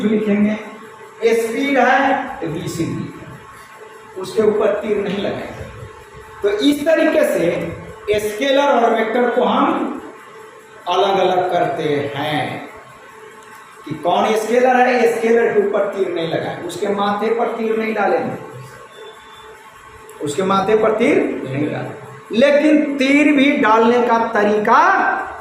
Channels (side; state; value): both; identical; correlation 1.00